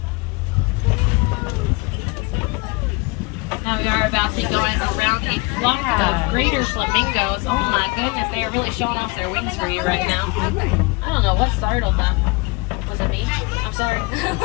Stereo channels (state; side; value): quieter; right; 26.8 dB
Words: Now we are about to be going around a flock of greater flamingos. Oh my goodness, they are really showing off their wings for you right now. I don't know what startled them. Was it me? I'm sorry.